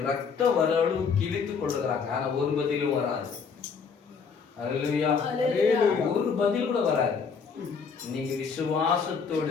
ரத்த வரவு கிழித்துக் கொள்ளுகிறாங்க. ஆனா ஒரு பதிலும் வராது. அல்லேலூயா, ஒரு பதில் கூட வராது. நீங்க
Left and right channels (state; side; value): quieter; right; 5.7 dB